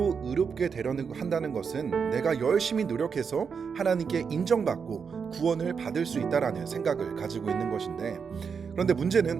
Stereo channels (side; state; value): left; quieter; 6.1 dB